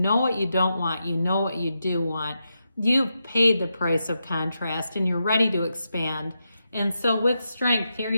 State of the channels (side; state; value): both; inverted; correlation -0.86